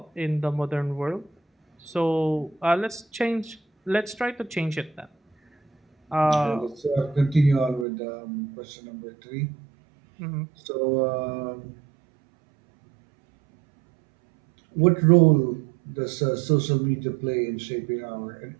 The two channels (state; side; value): drops out; left; at 7.9 s